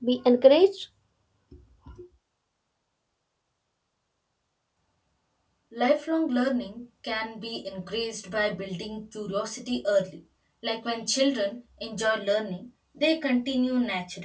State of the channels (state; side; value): identical; both; correlation 1.00